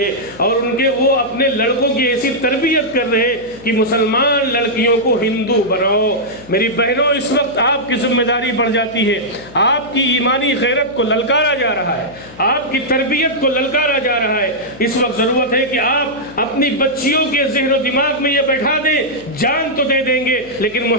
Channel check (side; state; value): left; noise; hum, 21 dB below the sound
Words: ہے، اور وہ اپنے لڑکوں کی ایسی تربیت کر رہے ہیں کہ مسلمان لڑکیوں کو ہندو بناؤ۔ میری بہنوں، اس وقت آپ کی ذمہ داری بڑھ جاتی ہے، آپ کی ایمانی غیرت کو للکارا جا رہا ہے، آپ کی تربیت کو للکارا جا رہا ہے۔ اس وقت ضرورت ہے کہ آپ اپنی بچیوں کے ذہن و دماغ میں یہ بیٹھا دیں، جان تو دے دیں گے لیکن